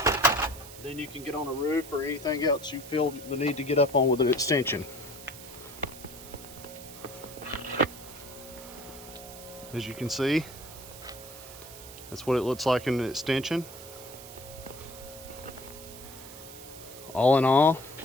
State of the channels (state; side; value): noise; right; hiss, 15 dB below the sound